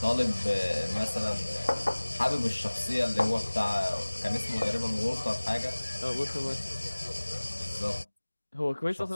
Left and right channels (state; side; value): inverted; both; correlation -1.00